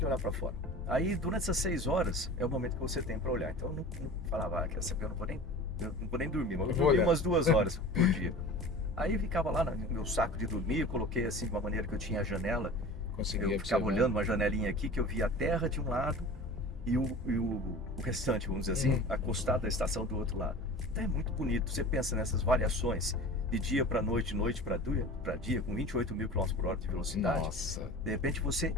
olhar para fora. Aí, durante essas 6 horas, é o momento que você tem para olhar. Então, eu não falava, quer saber, eu não vou nem dormir, mas eu dormi umas 2 horas por dia. Aí, eu ficava lá no meu saco de dormir, eu coloquei assim, de uma maneira que eu tinha a janela. Eu ficava olhando uma janelinha aqui, que eu via a terra de um lado e o restante, vamos dizer assim, acostado da estação do outro lado. Então é muito bonito. Você pensa nessas variações de dia para noite, noite para dia, com 28 mil km por hora de velocidade. Nossa. De repente você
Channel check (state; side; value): normal; both; correlation 0.37